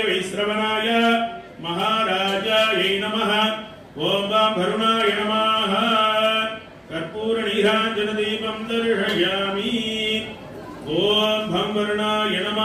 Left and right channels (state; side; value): identical; both; correlation 1.00